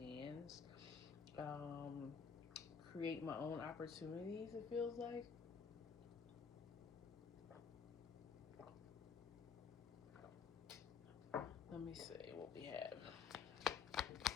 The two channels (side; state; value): right; quieter; 6.2 dB